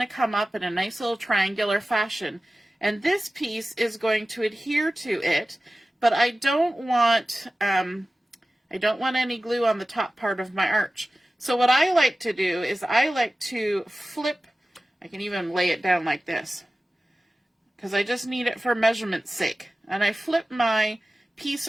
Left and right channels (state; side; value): normal; both; correlation 0.96